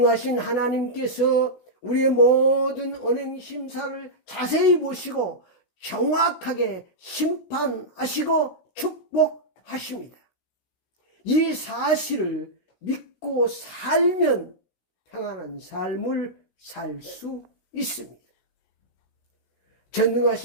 하나님께서 우리의 모든 언행 심사를 자세히 보시고 정확하게 심판하시고 축복하십니다. 이 사실을 믿고 살면 평안한 삶을 살 수 있습니다.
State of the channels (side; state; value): right; late; 16 ms